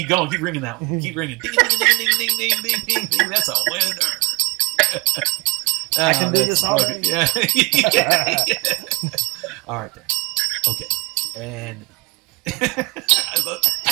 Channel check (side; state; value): left; quieter; 27.3 dB